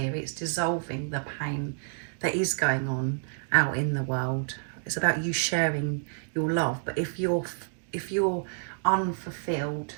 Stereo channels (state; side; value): silent; left; digital silence